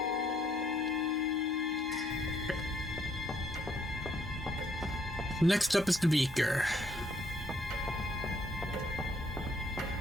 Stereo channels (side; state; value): both; normal; correlation 0.69